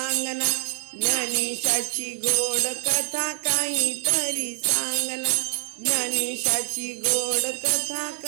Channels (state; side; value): silent; left; digital silence